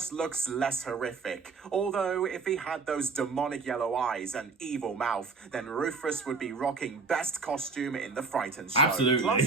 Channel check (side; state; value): left; quieter; 4.4 dB